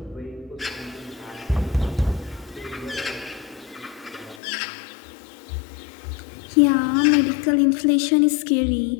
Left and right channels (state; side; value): drops out; right; at 4.4 s